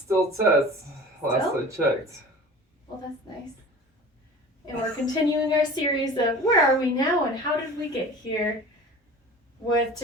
Tess. Last I checked. Well, that's nice. And we're continuing our series of Where Are We Now and How Did We Get Here? With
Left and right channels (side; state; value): both; normal; correlation 0.40